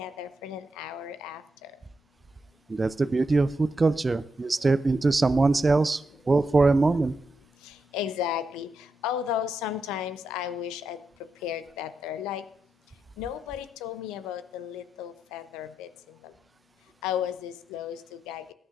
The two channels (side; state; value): both; normal; correlation 0.85